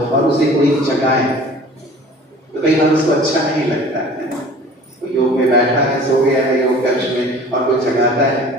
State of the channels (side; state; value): both; normal; correlation 0.46